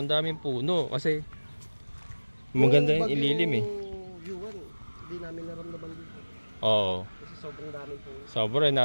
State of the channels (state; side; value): inverted; both; correlation -1.00